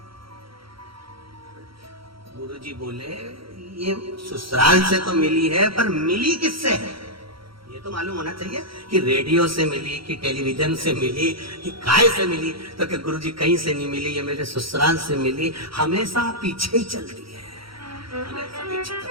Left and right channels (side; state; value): left; late; 0.75 ms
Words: गुरुजी बोले ये ससुराल से तो मिली है पर मिली किससे है ये तो मालूम होना चाहिए कि रेडियो से मिली कि टेलीविजन से मिली कि काय से मिली। तो कि गुरुजी कहीं से नहीं मिली, ये मेरे ससुराल से मिली। हमेशा पीछे ही चलती है,